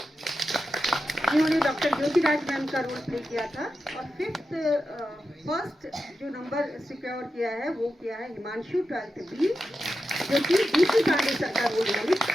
जिन्होंने डॉक्टर ज्योतिराज मैम का रोल प्ले किया था। और फर्स्ट जो नंबर सिक्योर किया है वो किया है हिमांशु 12th B, जो कि DC पांडे सर का रोल उन्होंने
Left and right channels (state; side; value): normal; both; correlation 0.90